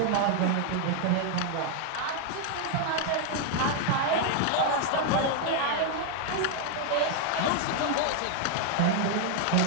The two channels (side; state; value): both; different; correlation 0.00